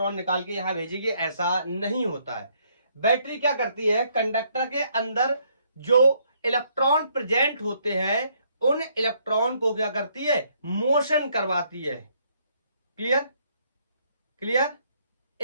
निकाल के यहां भेजेगी, ऐसा नहीं होता है। बैटरी क्या करती है, कंडक्टर के अंदर जो इलेक्ट्रॉन प्रेजेंट होते हैं उन इलेक्ट्रॉन को क्या करती है, मोशन करवाती है। Clear, clear.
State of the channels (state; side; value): inverted; both; correlation -0.69